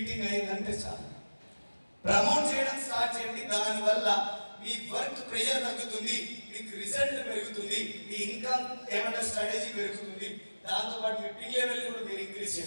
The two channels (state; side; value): inverted; both; correlation -1.00